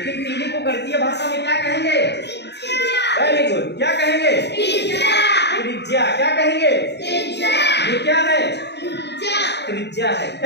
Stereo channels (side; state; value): right; late; 0.50 ms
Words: तीली को गणितीय भाषा में क्या कहेंगे? वेरी गुड, क्या कहेंगे? त्रिज्या। क्या कहेंगे? ये क्या है? त्रिज्या है।